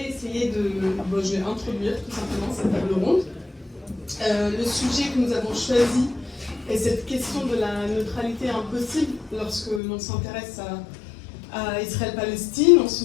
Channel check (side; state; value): right; drops out; at 9.8 s